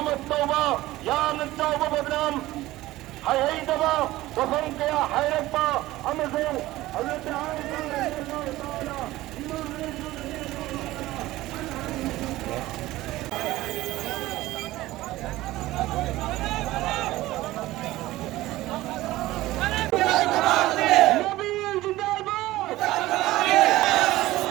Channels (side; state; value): left; quieter; 17.1 dB